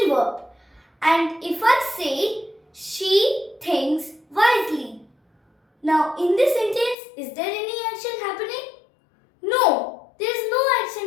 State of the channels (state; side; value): drops out; right; at 7.0 s